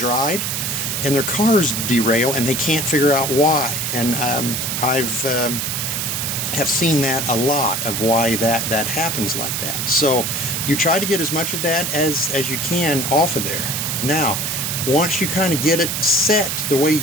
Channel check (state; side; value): noise; right; hiss, 1 dB below the sound